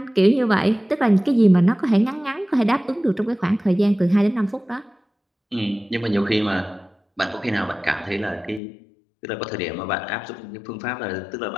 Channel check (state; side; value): drops out; right; at 8.6 s